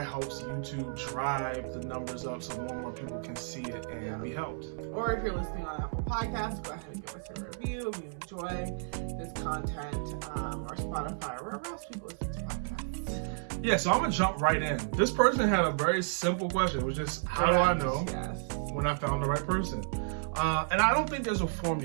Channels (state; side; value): silent; left; 56 dB below the other